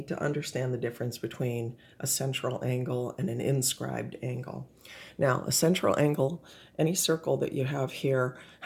to understand the difference between a central angle and an inscribed angle. Now, a central angle, any circle that you have here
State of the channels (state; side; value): identical; both; correlation 1.00